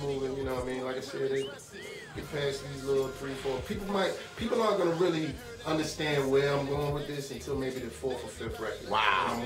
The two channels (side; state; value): both; identical; correlation 1.00